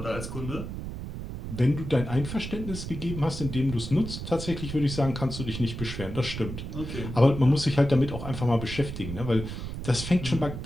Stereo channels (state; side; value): noise; right; rumble, 7 dB below the sound